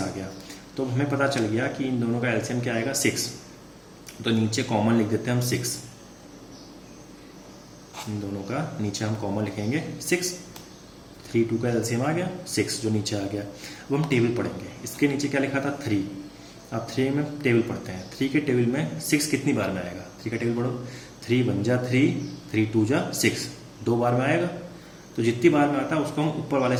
आ गया। तो हमें पता चल गया कि इन दोनों का एलसीएम क्या आएगा? 6। तो नीचे कॉमन लिख देते हैं हम 6। इन दोनों का नीचे हम कॉमन लिखेंगे 6। 3 2 का एलसीएम आ गया 6, जो नीचे आ गया। अब हम टेबल पढ़ेंगे। इसके नीचे क्या लिखा था? 3। अब 3 में टेबल पढ़ते हैं। 3 के टेबल में 6 कितनी बार में आएगा? 3 का टेबल पढ़ो। 3 1 जा 3, 3 2 जा 6, 2 बार में आएगा। तो जितनी बार में आता है उसको हम ऊपर वाले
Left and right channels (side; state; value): both; identical; correlation 1.00